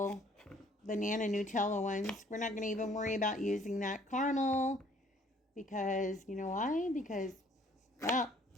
banana Nutella ones, we're not going to even worry about using that caramel. Because, you know why? Because, well,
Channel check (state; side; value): normal; both; correlation 0.59